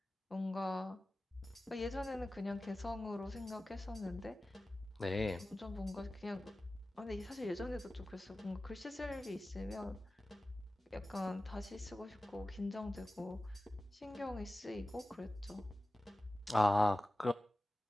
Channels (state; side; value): normal; both; correlation 0.95